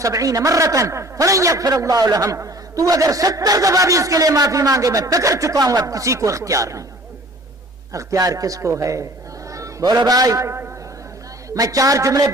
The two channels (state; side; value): normal; both; correlation 0.49